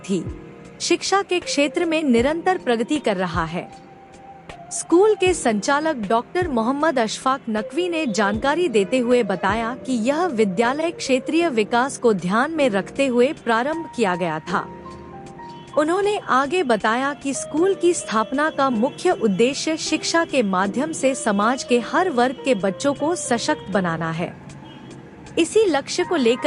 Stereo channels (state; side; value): identical; both; correlation 1.00